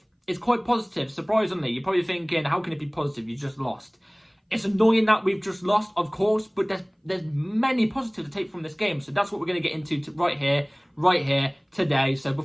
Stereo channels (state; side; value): identical; both; correlation 1.00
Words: It's quite positive, surprisingly. You're probably thinking, how can it be positive? You just lost. It's annoying that we've just lost, of course, but there's many positives to take from this game. So that's what we're going to get into right here, today. So